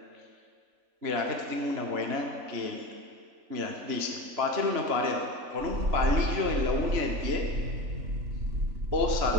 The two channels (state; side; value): late; left; 3.4 ms